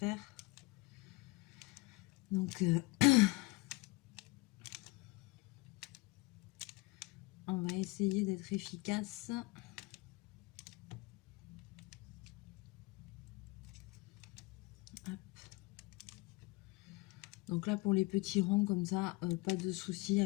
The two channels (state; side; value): quieter; right; 22.9 dB